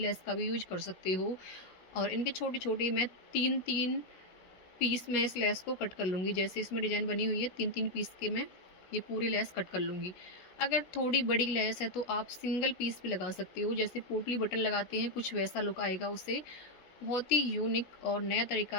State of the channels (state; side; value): late; right; 16 ms